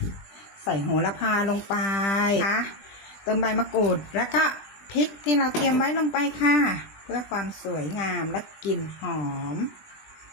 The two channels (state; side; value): late; right; 20 ms